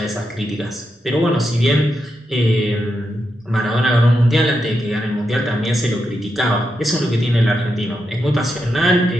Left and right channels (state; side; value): normal; both; correlation 0.85